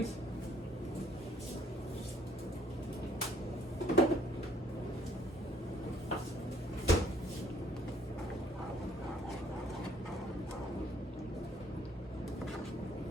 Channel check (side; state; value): both; normal; correlation 0.65